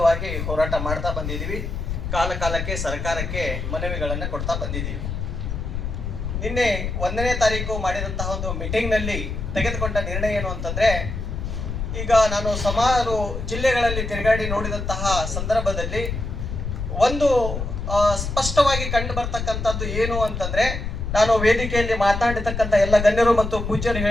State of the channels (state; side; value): noise; left; rumble, 4 dB below the sound